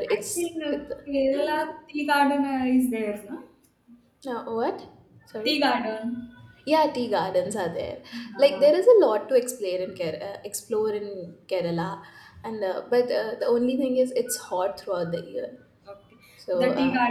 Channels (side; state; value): both; identical; correlation 1.00